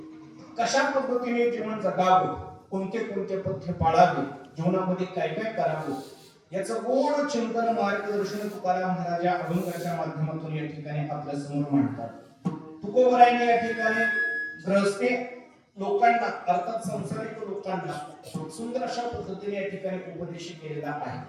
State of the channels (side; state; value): both; identical; correlation 1.00